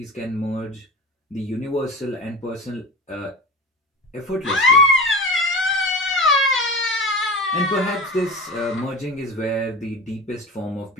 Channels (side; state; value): both; normal; correlation 0.30